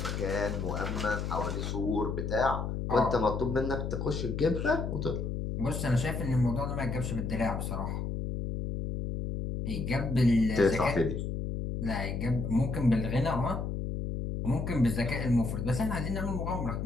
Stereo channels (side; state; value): left; noise; hum, 3 dB below the sound